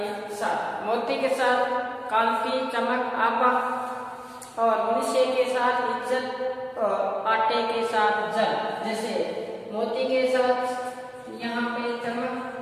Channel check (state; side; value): identical; both; correlation 1.00